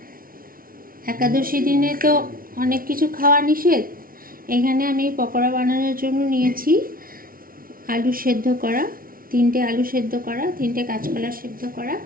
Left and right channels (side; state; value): left; late; 0.42 ms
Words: একাদশী দিনে তো অনেক কিছু খাওয়া নিষেধ। এখানে আমি পকোড়া বানানোর জন্য নিয়েছি আলু সেদ্ধ করা, 3টে আলু সেদ্ধ করা, 3টে কাঁচকলা সেদ্ধ করা,